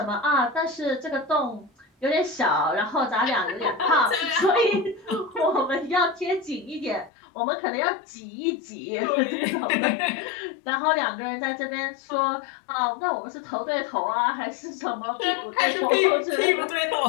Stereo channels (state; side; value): drops out; right; at 7.1 s